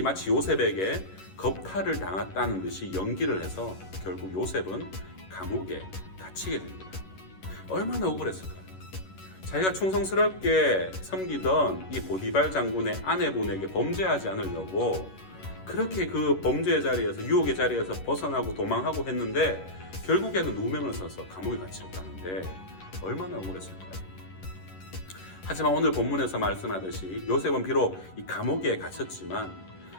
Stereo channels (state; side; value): late; right; 11 ms